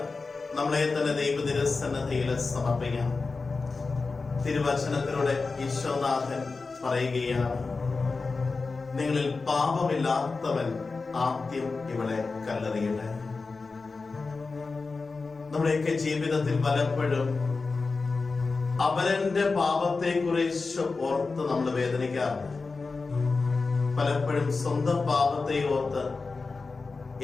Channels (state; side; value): quieter; right; 4.1 dB